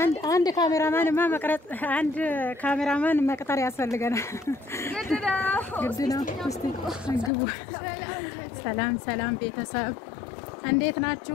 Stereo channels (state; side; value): drops out; right; at 7.3 s